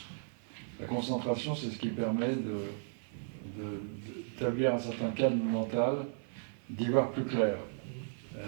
La concentration, c'est ce qui permet d'établir un certain calme mental, d'y voir plus clair.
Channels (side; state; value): left; silent; 54 dB below the other